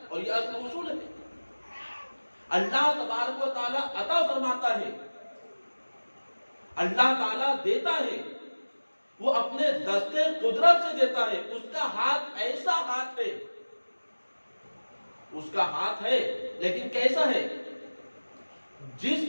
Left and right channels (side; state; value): both; inverted; correlation -1.00